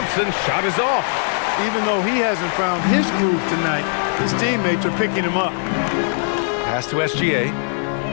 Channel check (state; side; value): silent; right; 66 dB below the other